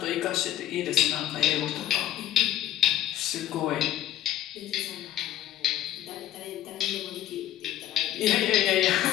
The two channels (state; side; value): quieter; right; 12.6 dB